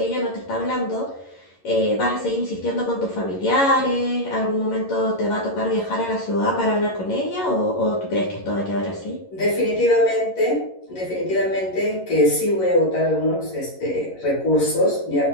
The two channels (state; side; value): late; right; 11 ms